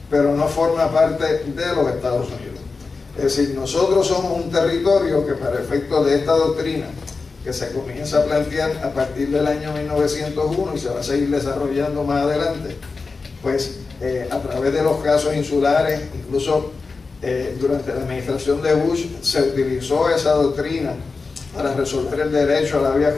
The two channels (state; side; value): quieter; right; 4.3 dB